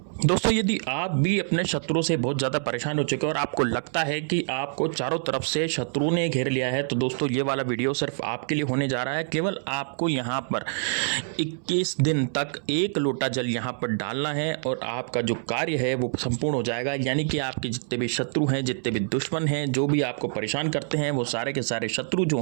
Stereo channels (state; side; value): silent; left; 61 dB below the other